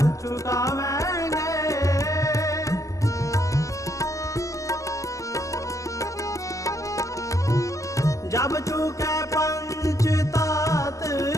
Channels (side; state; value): right; late; 0.16 ms